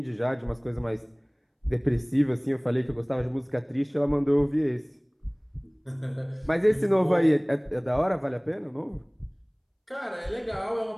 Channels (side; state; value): both; identical; correlation 1.00